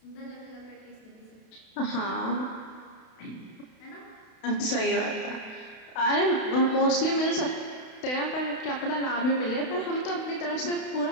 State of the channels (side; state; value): right; late; 32 ms